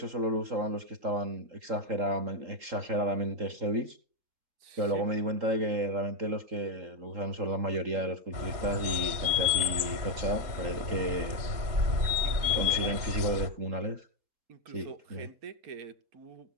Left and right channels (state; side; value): late; left; 3.8 ms